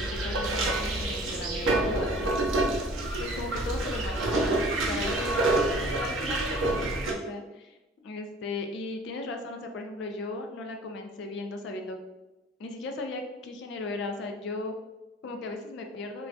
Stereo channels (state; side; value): normal; both; correlation 0.48